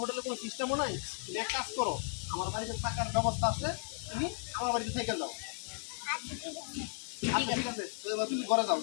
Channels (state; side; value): silent; right; 54 dB below the other